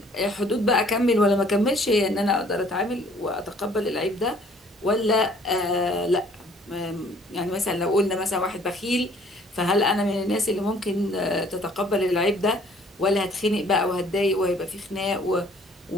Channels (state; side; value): normal; both; correlation 0.57